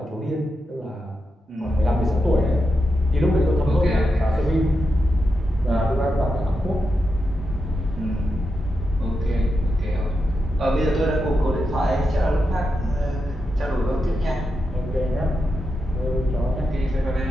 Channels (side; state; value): both; normal; correlation 0.87